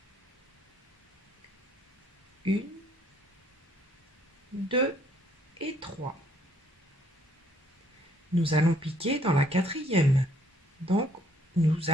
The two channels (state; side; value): normal; both; correlation 0.65